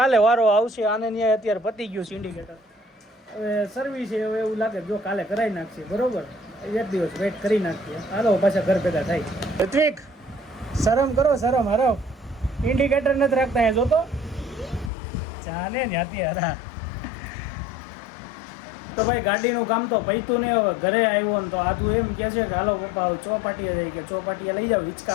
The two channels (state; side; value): drops out; right; at 14.9 s